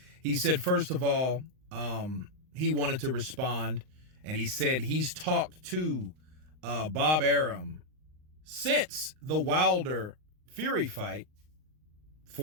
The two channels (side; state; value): left; late; 39 ms